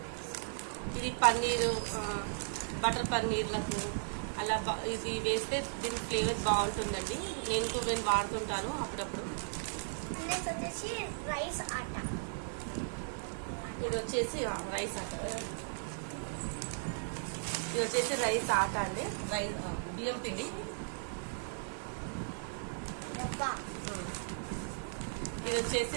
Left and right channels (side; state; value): left; silent; 54 dB below the other